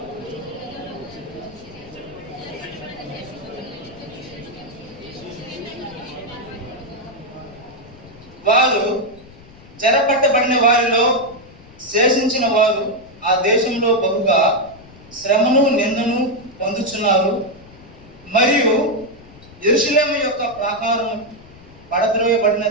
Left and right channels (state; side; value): noise; left; rumble, 22 dB below the sound